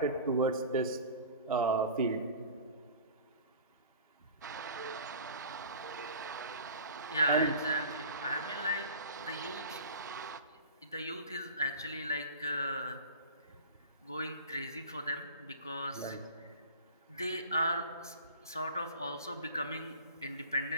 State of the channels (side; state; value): both; inverted; correlation -0.38